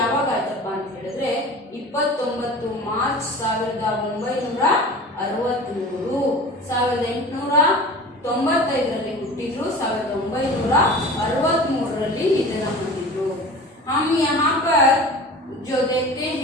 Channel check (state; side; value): normal; both; correlation 0.38